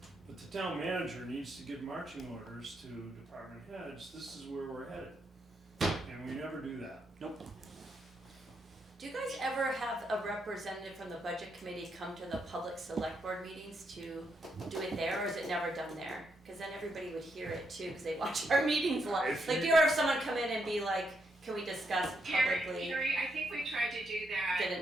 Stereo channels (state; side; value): normal; both; correlation 0.79